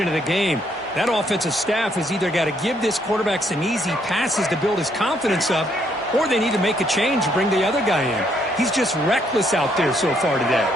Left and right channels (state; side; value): normal; both; correlation 0.71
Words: of the game. That offensive staff has either got to give this quarterback some easy passes to build his confidence up, or they need to make a change and bring the other guy in. He's just reckless out there so far today.